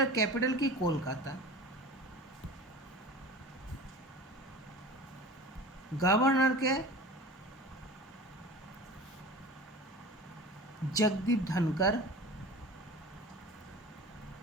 ক্যাপিটাল কি, কলকাতা। গভর্নরকে জগদীপ ধনকর।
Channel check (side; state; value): both; normal; correlation 0.36